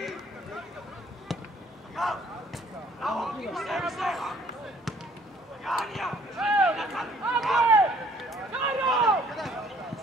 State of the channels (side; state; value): both; normal; correlation 0.59